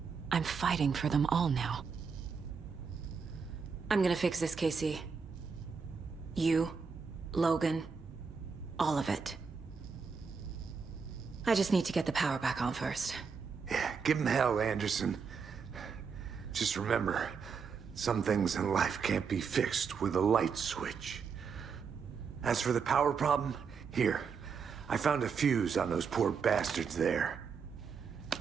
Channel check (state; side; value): quieter; left; 5.8 dB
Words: I'm fighting for them all now. I'm gonna fix this, Casey. You, Logan, all of it. I just need to get the power back on first. Yeah, give him hell, Anderson. Just remember, some things in life can't be fixed with a light switch. As for the power problem, here. I found a fuse on those poor bastards there.